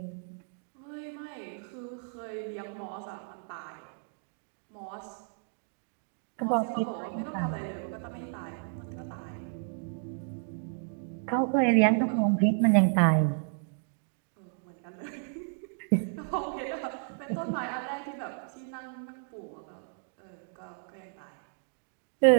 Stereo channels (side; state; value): left; silent; 56 dB below the other